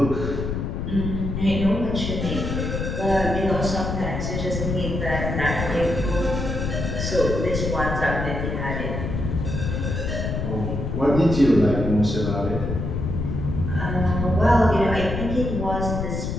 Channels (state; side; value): noise; left; rumble, 3 dB below the sound